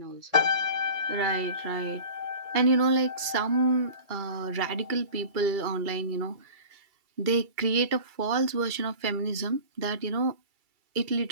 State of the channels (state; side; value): late; left; 2.3 ms